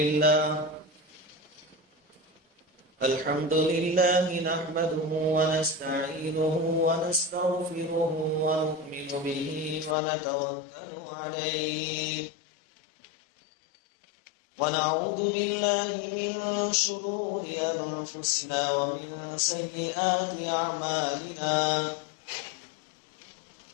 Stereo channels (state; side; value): drops out; right; at 10.0 s